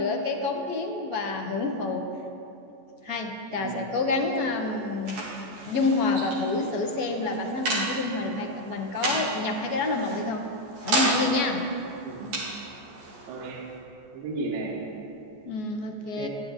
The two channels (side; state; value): left; late; 14 ms